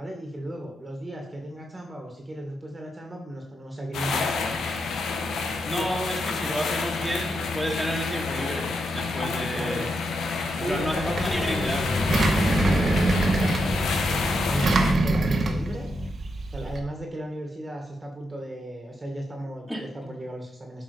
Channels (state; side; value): normal; both; correlation 0.83